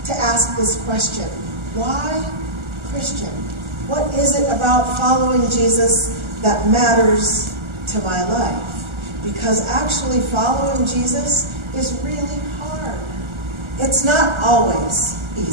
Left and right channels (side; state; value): left; late; 1.4 ms